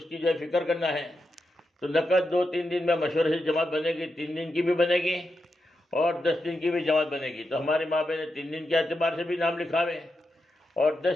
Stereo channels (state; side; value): normal; both; correlation 0.87